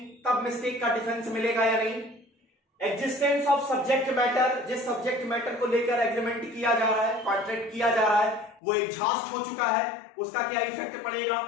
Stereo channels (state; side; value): drops out; right; at 8.6 s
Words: तब मिस्टेक का डिफेंस मिलेगा या नहीं। एग्जिस्टेंस ऑफ सब्जेक्ट मैटर, जिस सब्जेक्ट मैटर को लेकर एग्रीमेंट किया जा रहा है, कॉन्ट्रैक्ट किया जा रहा है, वो एग्जॉस्ट हो चुका है, उसका क्या इफेक्ट पड़ेगा।